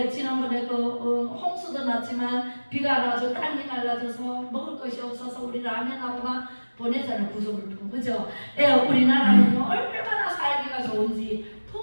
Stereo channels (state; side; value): inverted; both; correlation -1.00